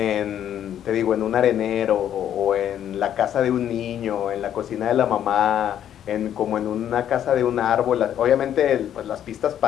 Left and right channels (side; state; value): right; quieter; 10.3 dB